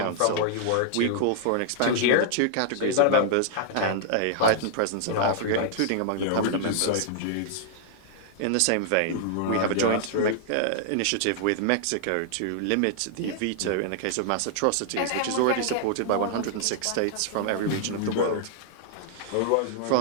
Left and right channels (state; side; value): different; both; correlation -0.01